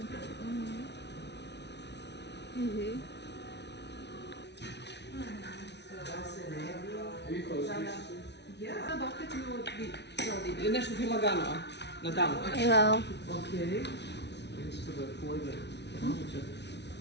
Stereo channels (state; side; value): late; right; 0.50 ms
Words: Nešto ti lagano, na tamo. Hello. Okay.